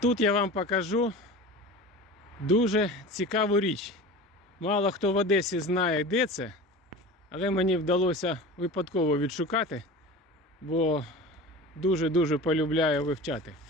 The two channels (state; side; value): normal; both; correlation 0.34